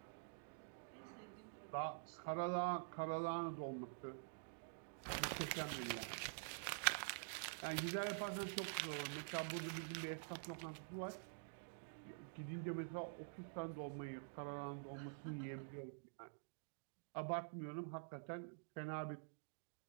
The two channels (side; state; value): left; silent; digital silence